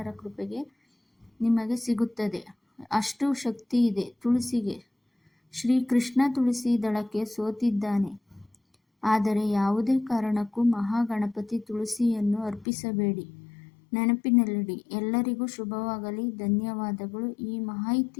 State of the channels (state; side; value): drops out; right; at 12.7 s